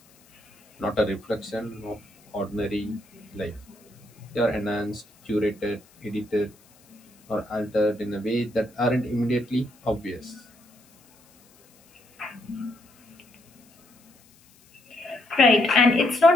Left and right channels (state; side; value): noise; left; hiss, 30 dB below the sound